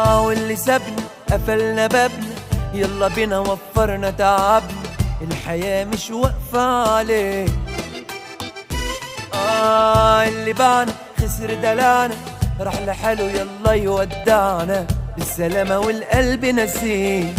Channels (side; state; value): both; identical; correlation 1.00